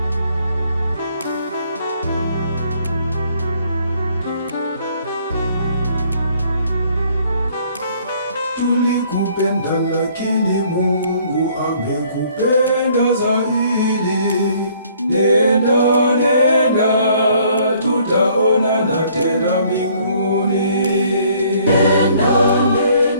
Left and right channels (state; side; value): inverted; both; correlation -0.61